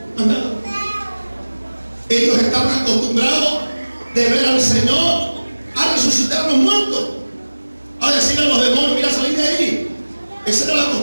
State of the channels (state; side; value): inverted; both; correlation -1.00